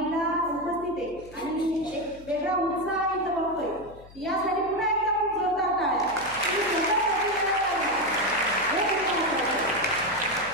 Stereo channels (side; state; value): left; noise; hum, 21 dB below the sound